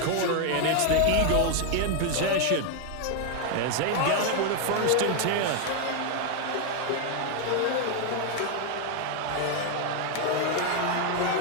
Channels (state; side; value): different; both; correlation 0.00